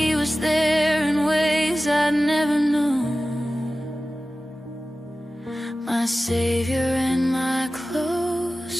was there in ways I'd never known, my Savior and my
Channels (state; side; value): normal; both; correlation 0.96